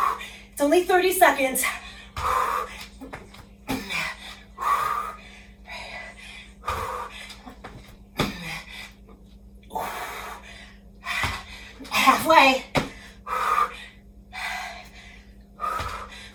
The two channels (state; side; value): identical; both; correlation 1.00